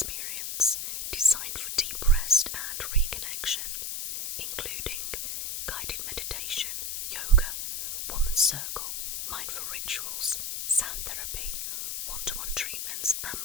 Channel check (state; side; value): noise; left; hiss, 3 dB below the sound